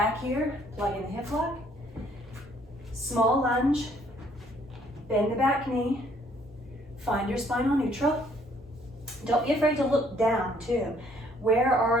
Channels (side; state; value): both; normal; correlation 0.63